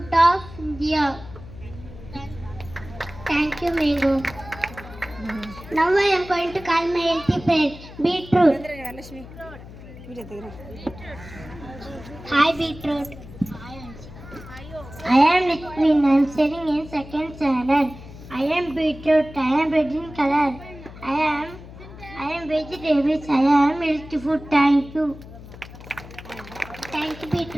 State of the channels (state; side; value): noise; left; hum, 16 dB below the sound